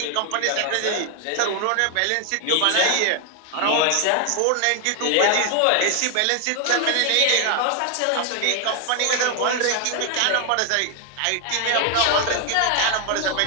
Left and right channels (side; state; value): both; different; correlation 0.00